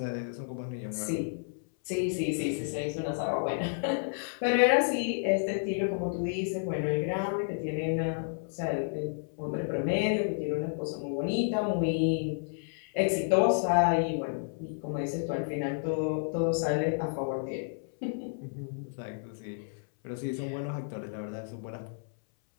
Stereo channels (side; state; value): right; silent; 57 dB below the other